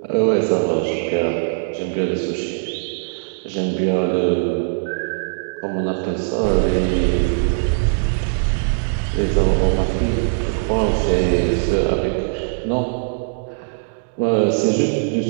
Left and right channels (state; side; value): silent; left; digital silence